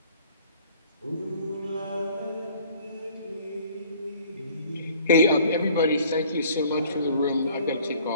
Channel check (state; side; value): inverted; both; correlation -0.53